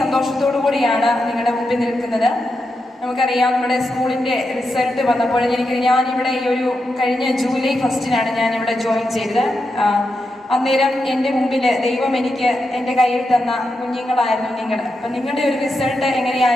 സന്തോഷത്തോടു കൂടിയാണ് നിങ്ങളുടെ മുമ്പിൽ നിൽക്കുന്നത്. നമുക്കറിയാം, നമ്മുടെ സ്കൂളിൻ്റെ റിസൾട്ട് വന്നപ്പോൾ ഞാനിവിടെ ഈ ഒരു കഴിഞ്ഞ ജൂലൈ 1 ഞാനിവിടെ ജോയിൻ ചെയ്തത്. അന്നേരം എൻ്റെ മുമ്പിൽ ദൈവം എനിക്ക് എൻ്റെ കയ്യിൽ തന്ന കുഞ്ഞുങ്ങളായിരുന്നു നിങ്ങൾ. അപ്പം നിങ്ങളുടെ ഒരു റിസൾട്ട്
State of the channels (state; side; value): normal; both; correlation 0.86